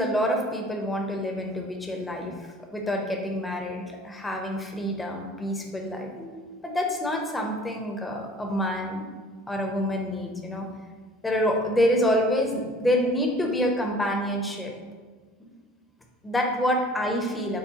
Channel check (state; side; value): normal; both; correlation 0.50